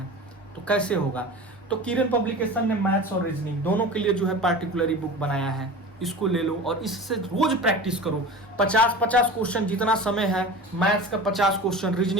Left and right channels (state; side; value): normal; both; correlation 0.34